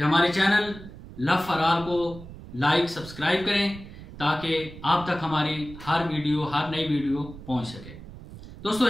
हमारे चैनल लव फॉर ऑल को लाइक सब्सक्राइब करें ताकि आप तक हमारी हर नई वीडियो पहुंच सके।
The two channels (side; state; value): right; noise; rumble, 15 dB below the sound